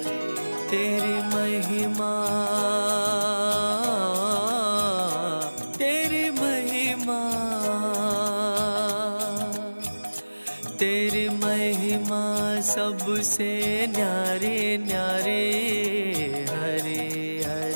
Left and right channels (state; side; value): inverted; both; correlation -1.00